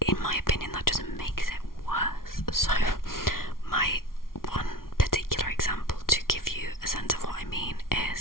in my opinion, that just makes it worse. So my one particular example to give you a sense of what I mean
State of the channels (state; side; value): late; right; 0.92 ms